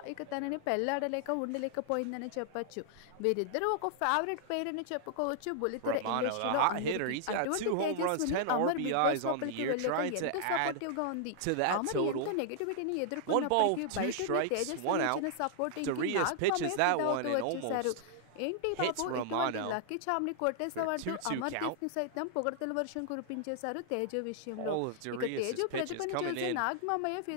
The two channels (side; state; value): both; different; correlation -0.01